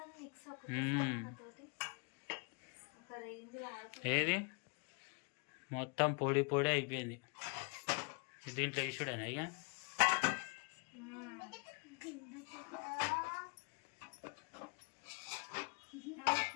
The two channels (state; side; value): quieter; right; 35.0 dB